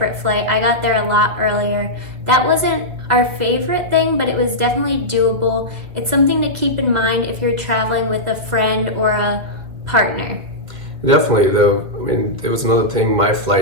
flight. I got there a lot earlier. That wasn't our favorite thing, but it was definitely doable. It's something to keep in mind if you're traveling with a friend or a partner. Definitely, though. I mean, there was another thing. My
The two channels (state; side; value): late; left; 2.1 ms